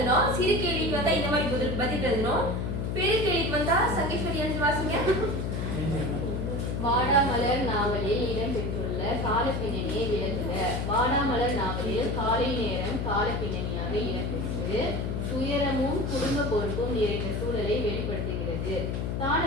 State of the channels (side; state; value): left; noise; hum, 1 dB below the sound